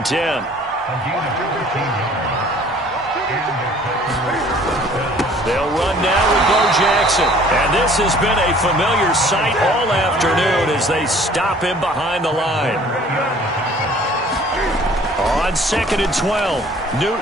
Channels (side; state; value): both; normal; correlation 0.53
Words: 10. They'll run now with Bo Jackson. And this has been a familiar sight all afternoon as they stop him behind the line. On 2nd and 12,